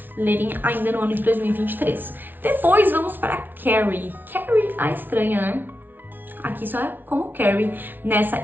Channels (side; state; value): left; late; 0.091 ms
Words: lerem ainda no ano de 2023. Depois vamos para Carrie. Carrie a Estranha, né? Aqui só é como Carrie, nessa